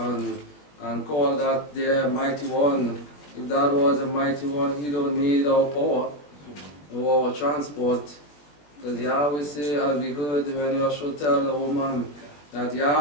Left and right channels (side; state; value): right; late; 20 ms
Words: call that their mighty one. If that was a mighty one, he don't need our power or our transport. Because Yahweh say, as we heard when Joshua tell the woman, that